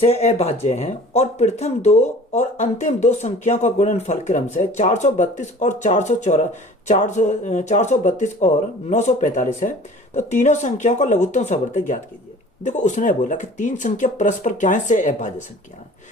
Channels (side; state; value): both; normal; correlation 0.45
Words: अभाज्य हैं और प्रथम 2 और अंतिम 2 संख्याओं का गुणनफल क्रम से 432 और 432 और 945 है, तो तीनों संख्याओं का लघुत्तम सावर्तक ज्ञात कीजिए। देखो उसने बोला कि 3 संख्या परस्पर क्या है, सह अभाज्य संख्या है,